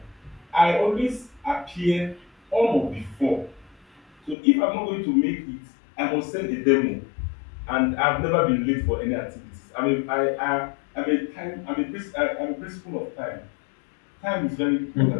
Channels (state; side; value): drops out; right; at 4.4 s